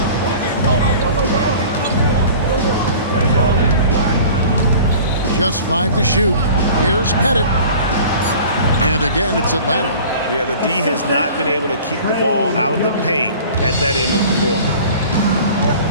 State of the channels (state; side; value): inverted; both; correlation -0.44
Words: Just 5 to shoot. Here's Pettit. And again, it's Atlanta. Yeah, the D has not been able to keep the ball out of the paint at that end of the floor.